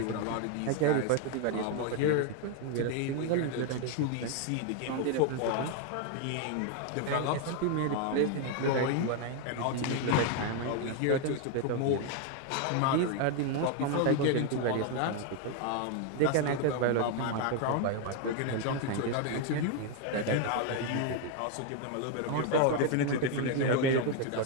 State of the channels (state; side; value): different; both; correlation 0.01